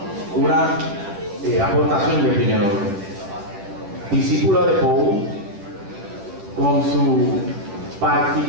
una aportación de primer orden. Discípula de Poe, con su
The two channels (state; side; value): late; left; 10 ms